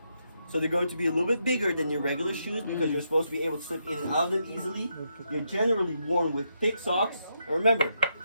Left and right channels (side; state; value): both; inverted; correlation -0.80